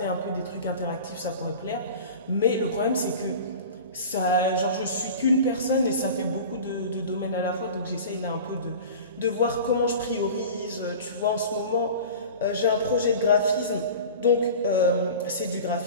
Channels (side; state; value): both; inverted; correlation -0.37